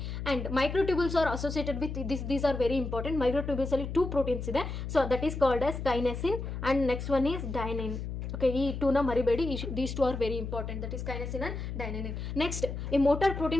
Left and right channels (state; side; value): noise; left; hum, 5 dB below the sound